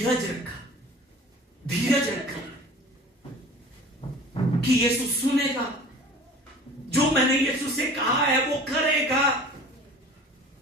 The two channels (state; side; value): normal; both; correlation 0.43